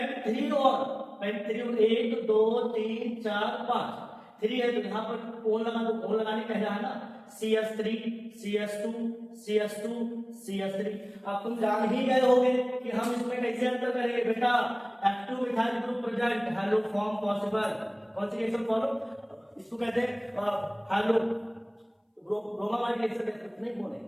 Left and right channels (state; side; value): identical; both; correlation 1.00